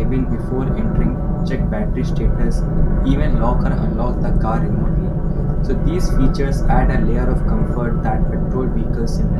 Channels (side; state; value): both; identical; correlation 1.00